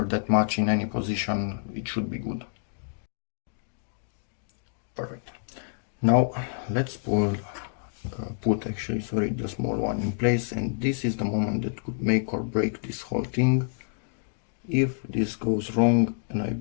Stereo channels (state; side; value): silent; right; digital silence